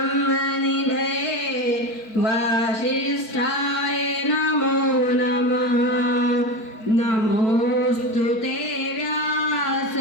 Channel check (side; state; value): right; late; 4.6 ms